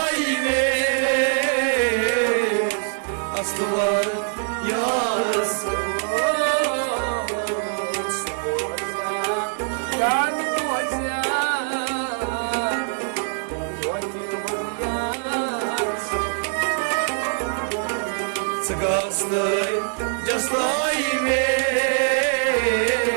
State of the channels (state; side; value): silent; left; 63 dB below the other